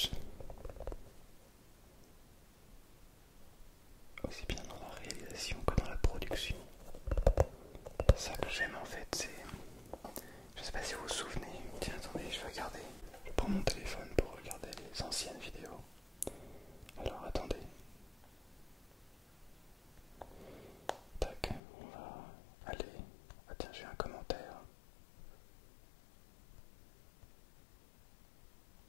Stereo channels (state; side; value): drops out; right; at 21.6 s